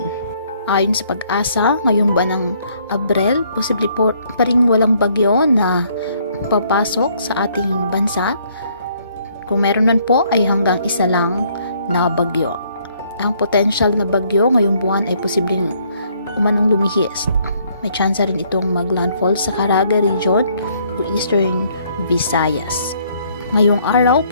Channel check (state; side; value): inverted; both; correlation -0.66